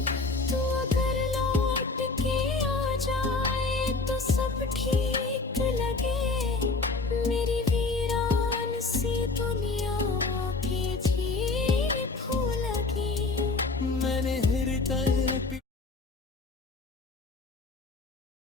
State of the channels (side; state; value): right; quieter; 3.7 dB